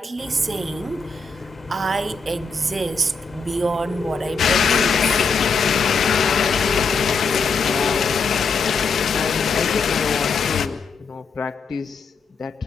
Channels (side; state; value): right; quieter; 4.5 dB